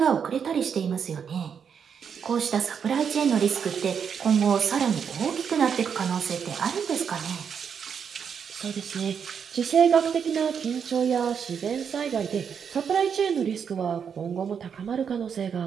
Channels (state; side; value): quieter; left; 7.1 dB